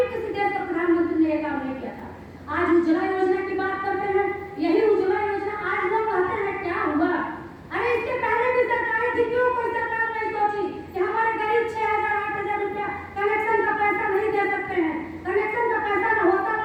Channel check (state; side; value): identical; both; correlation 1.00